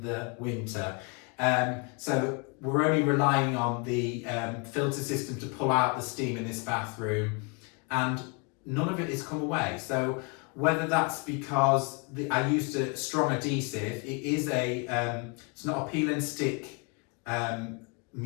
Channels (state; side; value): quieter; right; 32.8 dB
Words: the winter. So we're only relying on the filter system to pull out the steam in this bathroom, and none of it has come away. So whether that's because I used a strong adhesive, it's not a peel and stick